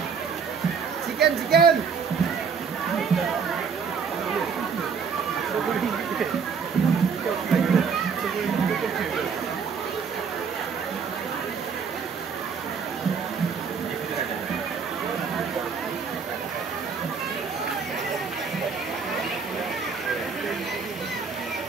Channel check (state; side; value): quieter; left; 6.0 dB